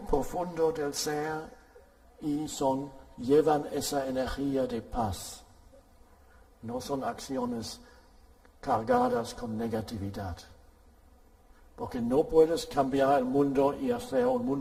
del ser y llevan esa energía de paz. No son acciones cargadas con negatividad. Porque no puedes cambiar el mundo y hacer un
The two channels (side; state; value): both; identical; correlation 1.00